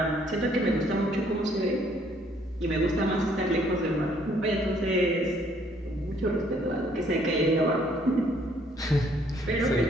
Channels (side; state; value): both; normal; correlation 0.64